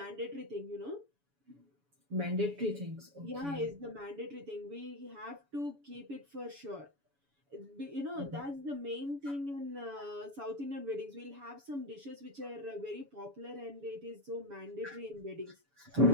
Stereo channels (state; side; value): late; left; 7.1 ms